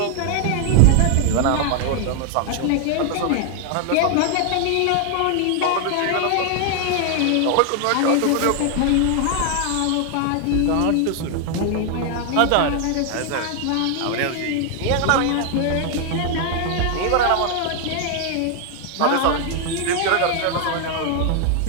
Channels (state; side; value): different; both; correlation 0.00